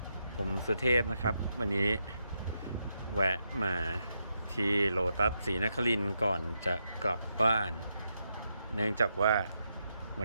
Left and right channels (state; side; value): inverted; both; correlation -0.83